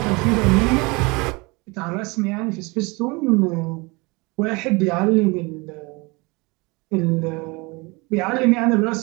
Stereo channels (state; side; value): quieter; left; 26.4 dB